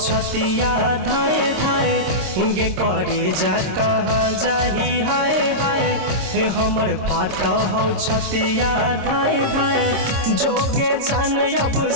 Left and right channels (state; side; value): late; left; 26 ms